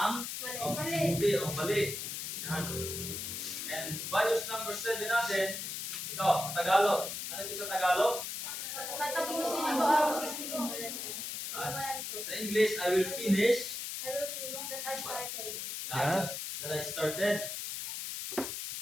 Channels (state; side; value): noise; left; hiss, 5 dB below the sound